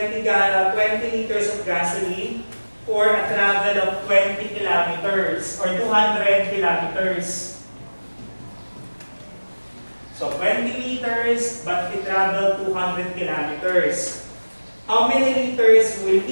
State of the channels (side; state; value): both; inverted; correlation -1.00